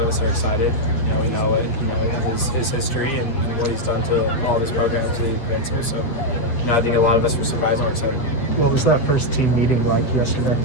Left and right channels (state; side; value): late; right; 7.8 ms